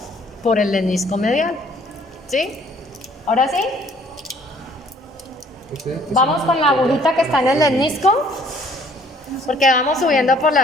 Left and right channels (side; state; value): both; normal; correlation 0.59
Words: por el lemnisco medial, ¿sí? ¿Ahora sí? Vamos con la agujita que está en el lemnisco, porque vamos subiendo por